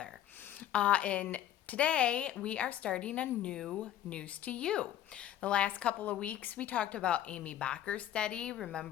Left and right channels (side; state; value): right; quieter; 11.6 dB